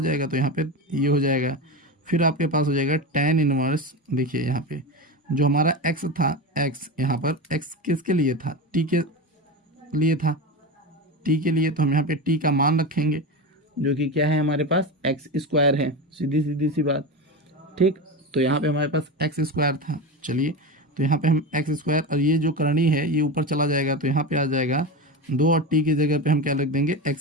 जाएगा, तो यहाँ पे ये हो जाएगा। फिर आपके पास हो जाएगा tan इनवर्स, देखिए यहाँ पे जो हमारा x था, x यहाँ पर x किसके लिए था, t के लिए था, t के लिए, तो हम यहाँ पे t का मान रखेंगे जो कि क्या है हमारे पास x² है, सीधी सी बात, ठीक। तो यहाँ पे हमारे पास x² था, चलिए तो यहाँ पे हम x² और ये जो करणी है ये ऊपर चला जाएगा, तो यहाँ पे आ जाएगा 2 और t की जगह पे हम क्या लिख देंगे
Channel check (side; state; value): both; normal; correlation 0.22